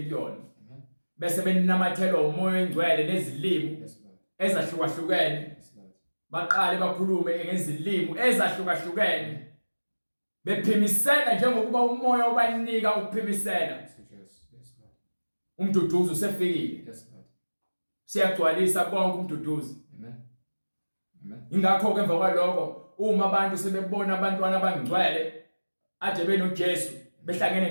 kuyona. Bese beninamathelwa umoya oyingcwele nezilimi ezahlukahlukene, baqale bakhulume ngezilimi ezahlukahlukene, bephimisela njengokuba umoya ubanika ukuphimisela. Umduduzi usefikile, siyagcwalisa konke umduduzi. Ingakho ke emva kwalokho uma abantu sebebona abantwana abangcwele aje benoJesu behlangene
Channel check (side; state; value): both; inverted; correlation -1.00